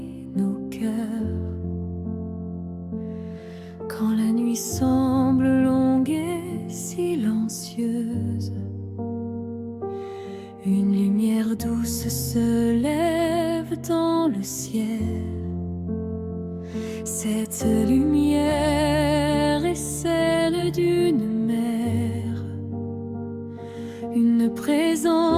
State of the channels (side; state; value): both; identical; correlation 1.00